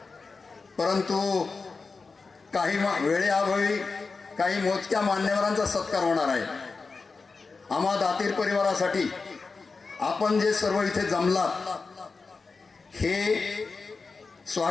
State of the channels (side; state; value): right; quieter; 4.3 dB